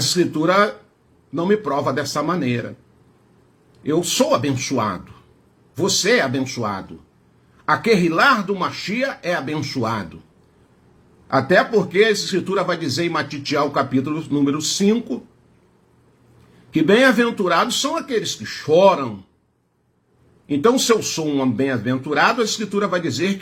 não me prova dessa maneira. Eu sou abençoado. Você é abençoado. A querrilar do Machia é abençoado. Até porque a escritura vai dizer em Matitial, capítulo número 5, que bem-aventurados são aqueles que choram. Então, se eu sou um bem-aventurado, a escritura vai dizer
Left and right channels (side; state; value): both; identical; correlation 1.00